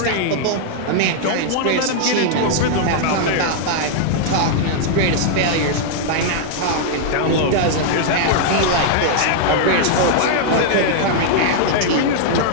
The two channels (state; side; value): different; both; correlation -0.01